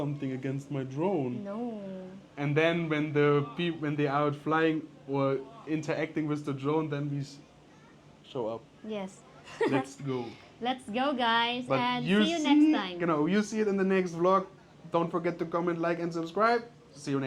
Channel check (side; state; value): both; identical; correlation 1.00